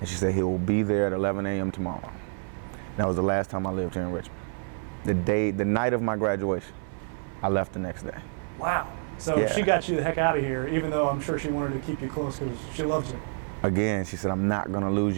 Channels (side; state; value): left; silent; 59 dB below the other